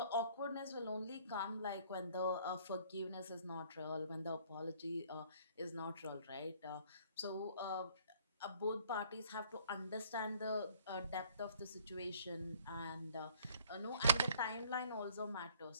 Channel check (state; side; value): inverted; both; correlation -0.57